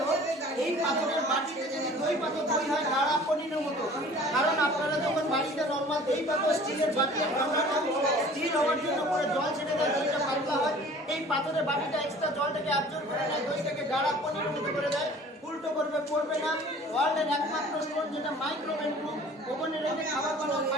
এই পাথরের মাটিতে যদি দই পাথর দই হয় গাঢ়া পনিরের মতো। কারণ আপনারা যখন বাড়িতে নর্মাল দই পাথর স্টিলের বাটি স্টিল হওয়ার জন্য করে জল ছেড়ে দেয়, দইটা পাতলা হয়। এই পাথরের বাটিটা এক্সট্রা জলটাকে অ্যাবজর্ব করে নেয়, দইটাকে গাঢ়া পনিরের মতো করে দেয়। উল্টো করবে পড়বে না। ওয়ার্ল্ডের একমাত্র স্টোন যেটা মাইক্রোওয়েভ প্রুফ, ওভেনে রেখে খাবার বানানো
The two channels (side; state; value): both; normal; correlation 0.48